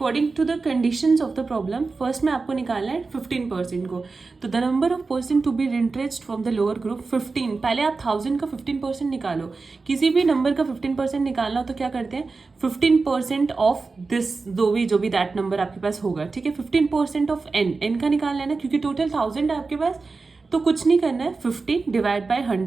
to the conditions of the problem, first में आपको निकालना है 15% को। तो the number of person to be retrenched from the lower group 15। पहले आप 1000 का 15% निकालो। किसी भी नंबर का 15% निकालना हो तो क्या करते हैं, 15% ऑफ दिस जो भी दैट नंबर आपके पास होगा। ठीक है, 15% ऑफ n का निकालना है ना, क्योंकि टोटल 1000 है आपके पास, तो कुछ नहीं करना है, 50 डिवाइड बाय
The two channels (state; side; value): quieter; left; 4.1 dB